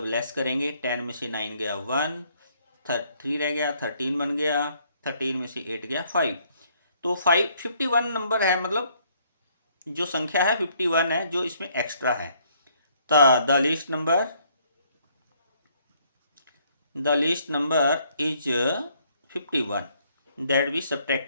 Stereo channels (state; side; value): inverted; both; correlation -0.66